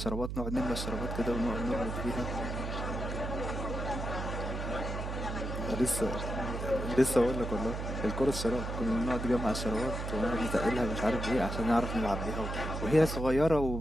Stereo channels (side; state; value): right; noise; hum, 4 dB below the sound